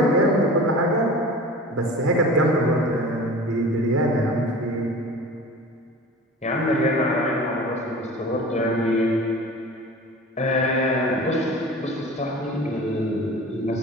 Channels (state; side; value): normal; both; correlation 0.38